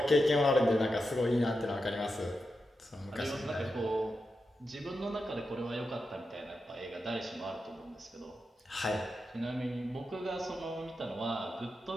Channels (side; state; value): both; normal; correlation 0.88